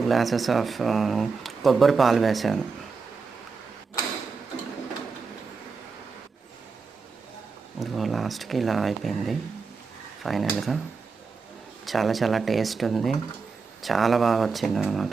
గ్లాసెస్ ఆఫ్ కొబ్బరి పాలు వేసాను. ఇదిగో లాస్ట్కి ఇలా అయిపోయింది ఫైనల్గా. చాలా టేస్ట్ ఉంది, చాలా బాగా వచ్చింది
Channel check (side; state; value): left; quieter; 4.8 dB